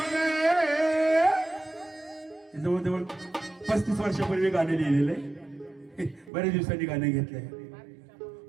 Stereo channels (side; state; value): left; drops out; at 6.3 s